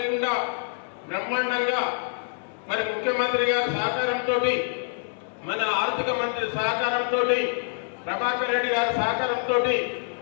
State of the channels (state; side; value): silent; right; 60 dB below the other